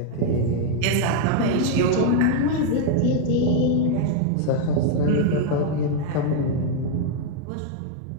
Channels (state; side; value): different; both; correlation 0.00